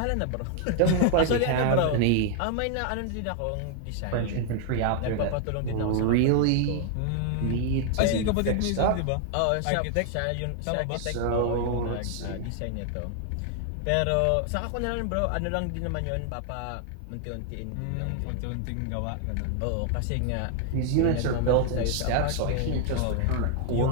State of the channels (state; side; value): different; both; correlation 0.00